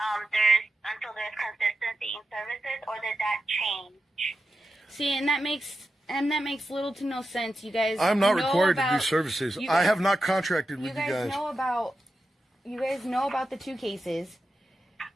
there's consistency in services, or did that change? See, and that makes little to no sense, you guys. I'm not required to do services. I have not contracted with you guys. You guys know about the 2 cases,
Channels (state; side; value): normal; both; correlation 0.90